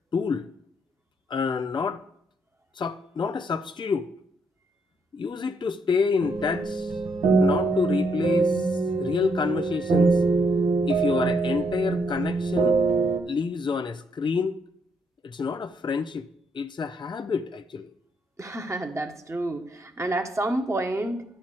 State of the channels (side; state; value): both; normal; correlation 0.74